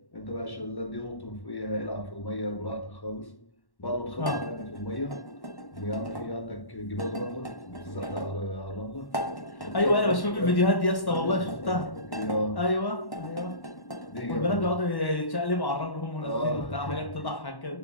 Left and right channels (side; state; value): right; late; 1.1 ms